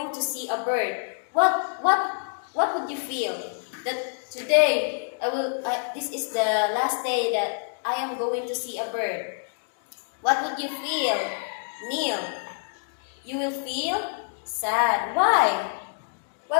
to see a bird. What would you feel? That today this is the last day that I am going to see a bird. What would you feel? Neil, you will feel sad. Why?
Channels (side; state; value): right; silent; digital silence